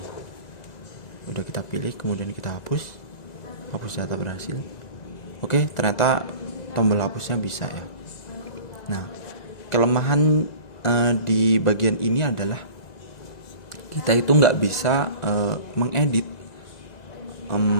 Udah kita pilih, kemudian kita hapus data berhasil. Oke, ternyata tombol hapusnya bisa ya. Nah, kelemahan di bagian ini adalah kita itu nggak bisa mengedit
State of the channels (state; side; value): late; right; 1.9 ms